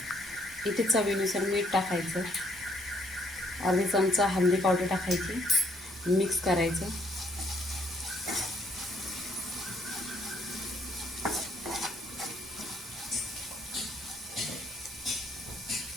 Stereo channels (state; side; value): normal; both; correlation 0.67